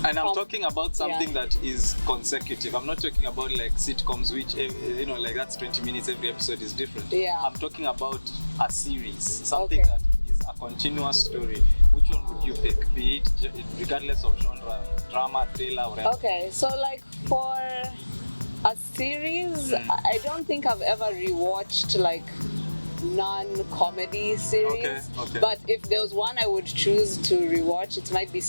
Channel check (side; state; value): both; inverted; correlation -1.00